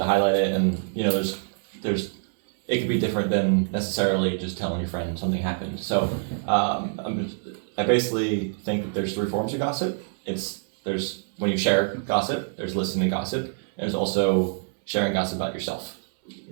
highlight it, and there's it could be different than necessarily just telling your friend something happened. So I basically think that there's three forms of gossip. There's when you share gossip, there's listening to gossip, and there's also sharing gossip about yourself.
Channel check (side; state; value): left; silent; digital silence